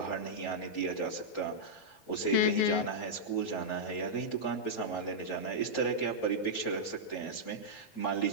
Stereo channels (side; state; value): right; late; 6.9 ms